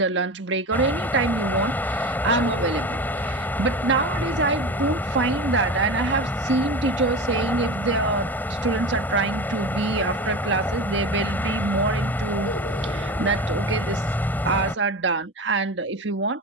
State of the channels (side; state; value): both; normal; correlation 0.28